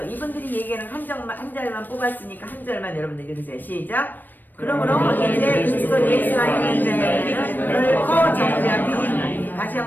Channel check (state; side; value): late; right; 0.091 ms